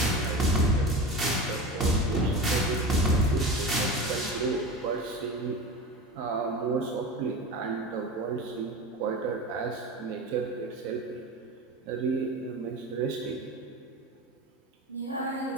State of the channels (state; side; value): normal; both; correlation 0.28